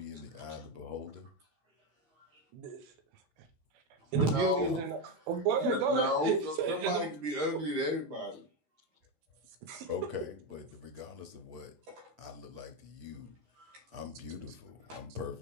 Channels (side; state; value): left; late; 13 ms